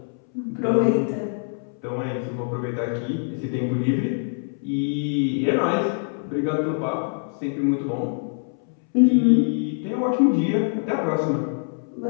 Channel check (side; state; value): right; silent; 62 dB below the other